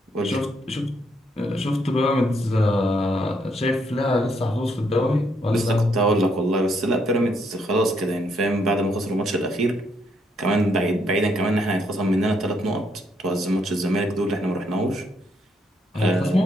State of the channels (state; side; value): normal; both; correlation 0.73